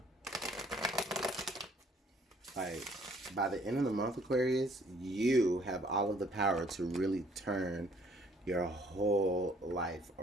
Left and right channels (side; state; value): both; normal; correlation 0.62